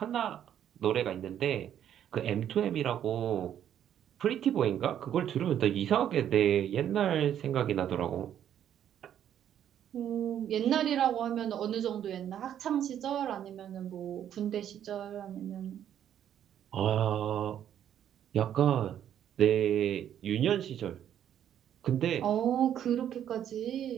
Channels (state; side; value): quieter; left; 10.1 dB